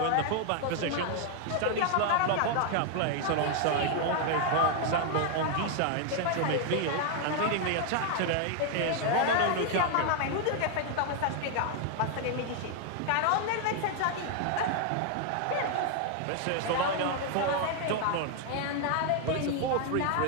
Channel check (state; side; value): different; both; correlation 0.00